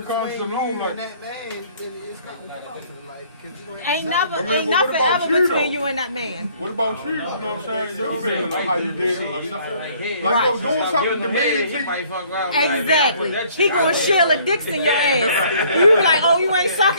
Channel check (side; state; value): both; inverted; correlation -0.59